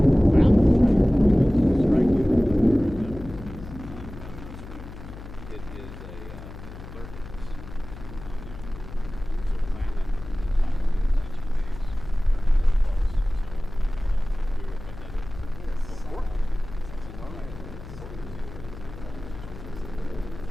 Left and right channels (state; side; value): noise; left; hum, 13 dB below the sound